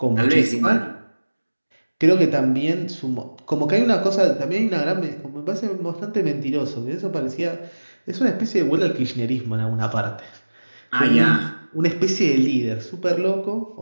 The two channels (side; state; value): both; inverted; correlation -1.00